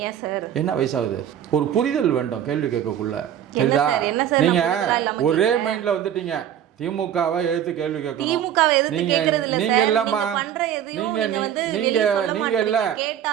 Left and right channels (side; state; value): left; quieter; 10.2 dB